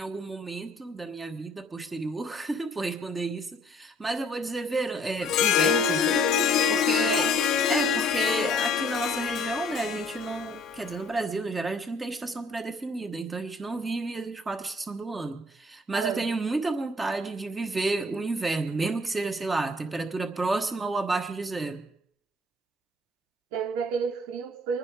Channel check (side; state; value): both; normal; correlation 0.59